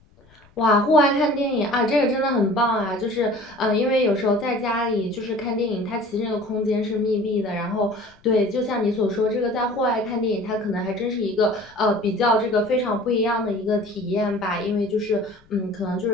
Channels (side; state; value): left; noise; rumble, 29 dB below the sound